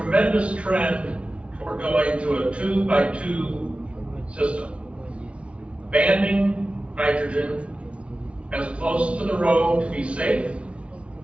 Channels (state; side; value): late; left; 0.060 ms